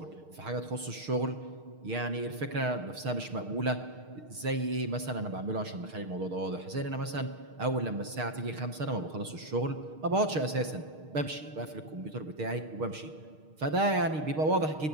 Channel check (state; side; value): late; left; 6.5 ms